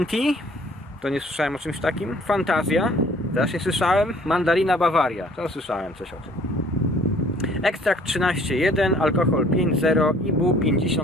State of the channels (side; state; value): both; normal; correlation 0.56